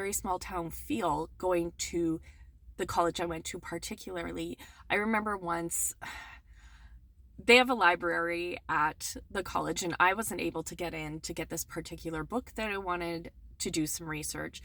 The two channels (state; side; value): identical; both; correlation 1.00